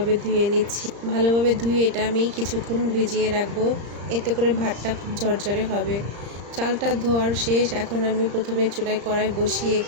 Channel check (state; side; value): late; left; 35 ms